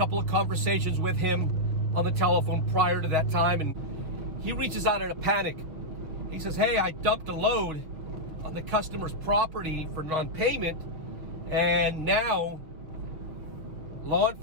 of conversations with him on the telephone prior to that time. And he reaches out in a panic. He says, hey, I dumped a load on the customer's property for non-payment, and now law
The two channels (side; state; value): left; late; 6.3 ms